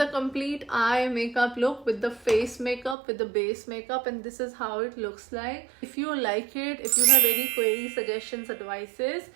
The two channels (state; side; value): drops out; left; at 3.0 s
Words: complete eye makeup look with the face makeup, with the base makeup, and this is how it looks like. If you like it, if you have any queries, suggestions, advices,